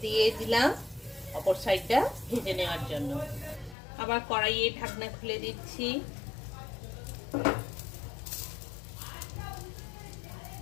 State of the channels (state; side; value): drops out; right; at 3.8 s